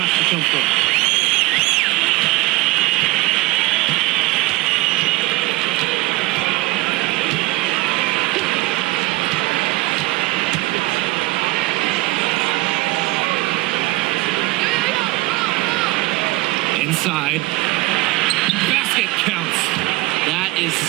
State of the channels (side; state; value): left; quieter; 20.1 dB